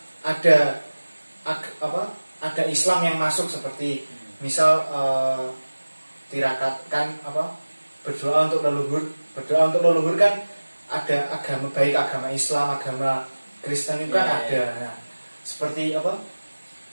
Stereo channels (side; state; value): both; inverted; correlation -1.00